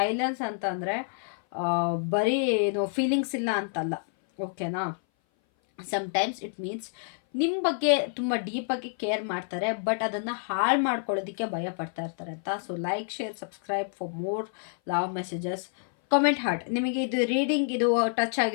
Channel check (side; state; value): right; silent; 57 dB below the other